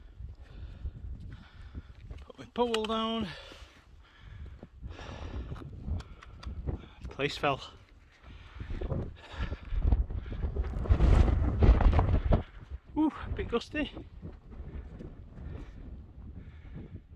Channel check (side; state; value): both; identical; correlation 1.00